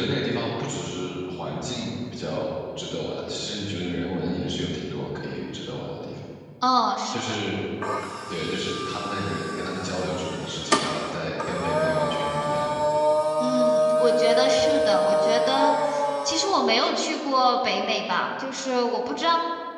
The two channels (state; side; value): identical; both; correlation 1.00